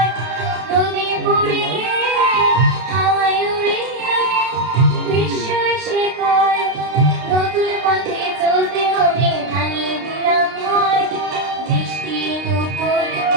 নদী পড়ে হাওয়ায় উড়িয়ে গ্রীষ্ম এসে কয় নতুন পথে চলতে হবে ভাঙিয়ে দিলাম হয় বৃষ্টির উপর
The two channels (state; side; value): late; left; 32 ms